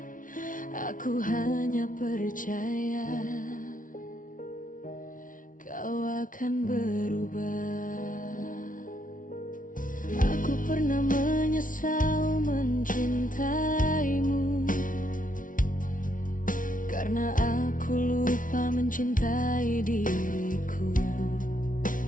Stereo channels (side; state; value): right; late; 0.38 ms